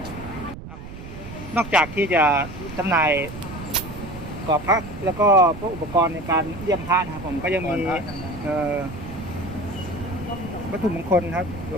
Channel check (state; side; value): noise; right; rumble, 12 dB below the sound